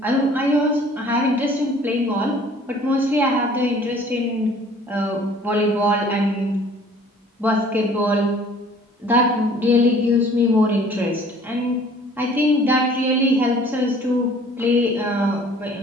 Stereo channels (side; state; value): both; normal; correlation 0.52